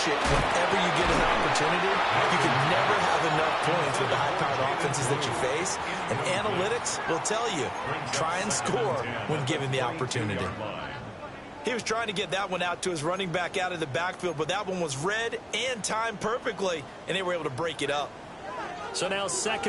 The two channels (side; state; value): both; identical; correlation 1.00